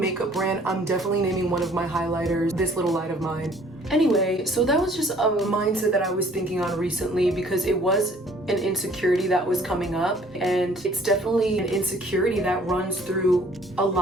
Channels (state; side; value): normal; both; correlation 0.57